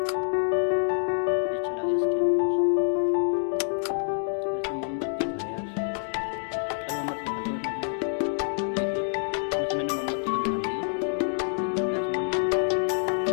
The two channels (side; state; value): right; silent; digital silence